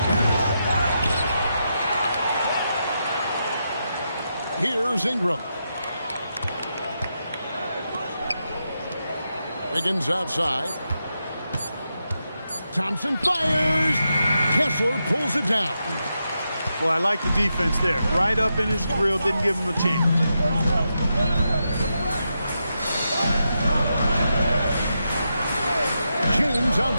Here's Ingram. Wiggins outside. Thompson fires. Kessler pulls it down. Well, I like the defense there. Right up in his grill, didn't give him a chance. James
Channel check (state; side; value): inverted; both; correlation -0.86